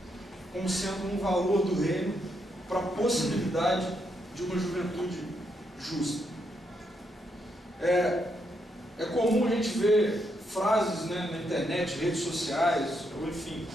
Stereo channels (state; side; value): normal; both; correlation 0.79